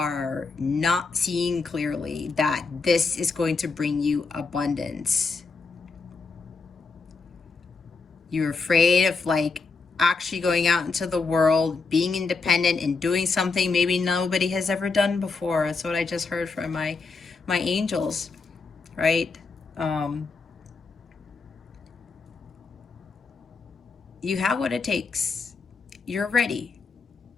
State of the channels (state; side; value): quieter; right; 4.3 dB